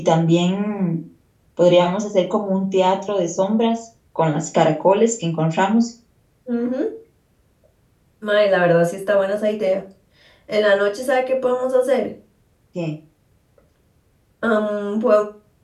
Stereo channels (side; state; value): both; identical; correlation 1.00